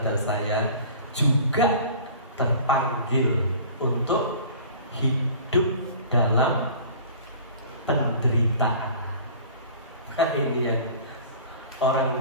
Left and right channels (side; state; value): both; inverted; correlation -0.44